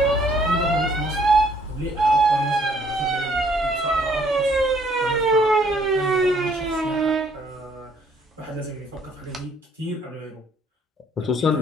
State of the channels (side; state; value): both; normal; correlation 0.63